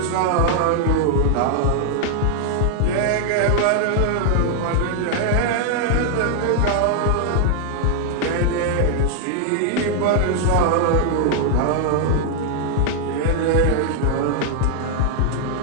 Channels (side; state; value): both; different; correlation 0.00